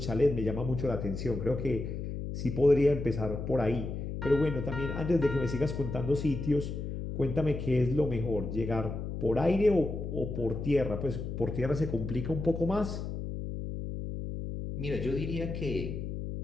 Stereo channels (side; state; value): left; noise; hum, 5 dB below the sound